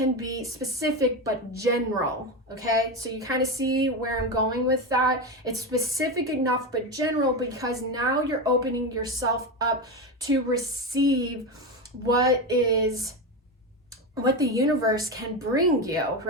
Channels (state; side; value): normal; both; correlation 0.16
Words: be specific but general, okay? So you kind of see where I'm going with that. It's specific enough but general because now you're opening yourself up to receive what the universe can bring you,